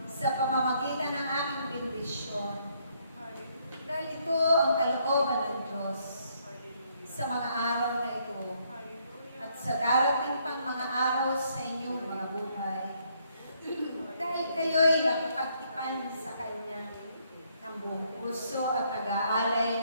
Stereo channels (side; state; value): both; inverted; correlation -0.71